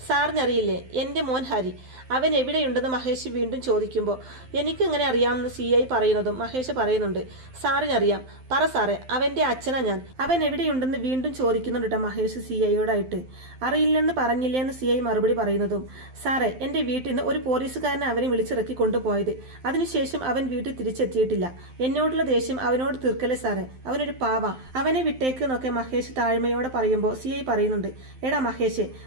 സാറിനറിയില്ലേ എൻ്റെ മോൻ ഹരി, അവൻ എവിടെയുണ്ടെന്ന് മഹേഷ് വീണ്ടും ചോദിക്കുമ്പോൾ, എനിക്കെങ്ങനെ അറിയാമെന്ന് CI പറയുന്നതും മഹേഷ് പറയുന്നുണ്ട്, സാറിനറിയാം, പറ സാറേ, അവൻ്റെ അച്ഛനാ ഞാൻ. അവൻ എവിടെയുണ്ടെന്ന് വീണ്ടും ചോദിക്കുന്നുണ്ട് കേട്ടോ മഹേഷ് CIയോടായിട്ട്. അറിയില്ലെന്ന് പറഞ്ഞില്ലേ എന്ന് CI മറുപടി പറയുന്നതും, സാറേ, എൻ്റെ വീട്ടിൽ നിന്ന് ഒരു പോലീസുകാരനെ അവനെ വിളിച്ചിറക്കി കൊണ്ടുപോയത്. അതിനുശേഷം അതിനുശേഷം അവൻ വീട്ടിൽ തിരിച്ചെത്തിയിട്ടില്ല. എന്നോടുള്ള ദേഷ്യം അവനോട് തീർക്കല്ലേ സാറേ, അവനൊരു പാവ, അവനെ വിട്ടേക്ക് എന്നൊക്കെ മഹേഷ് താഴ്മയോടെ പറയുമ്പോൾ CI പറയുന്നുണ്ട്, എടാ മഹേഷ്,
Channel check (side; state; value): left; late; 12 ms